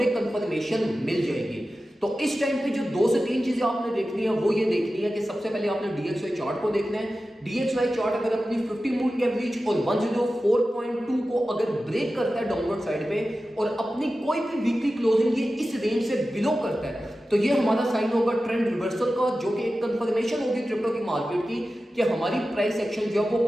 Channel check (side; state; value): both; normal; correlation 0.94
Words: कंफर्मेशन मिल जाएगी। तो इस टाइम पे जो 2 से 3 चीजें आपने देखनी है वो ये देखनी है कि सबसे पहले आपने DXY चार्ट को देखना है। DXY चार्ट अगर अपनी 50 मूविंग एवरेज और 104.2 को अगर ब्रेक करता है डाउनवर्ड साइड पे और अपनी कोई भी वीकली क्लोजिंग ये इस रेंज से बिलो करता है, तो ये हमारा साइन होगा ट्रेंड रिवर्सल का, जो कि एक कंफर्मेशन होगी क्रिप्टो की मार्केट की कि हमारी प्राइस एक्शन जो है वो